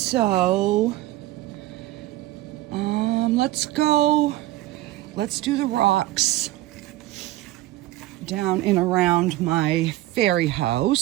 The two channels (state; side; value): quieter; left; 16.5 dB